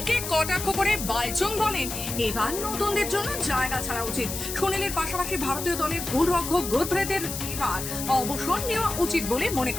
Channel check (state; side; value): noise; left; hiss, 6 dB below the sound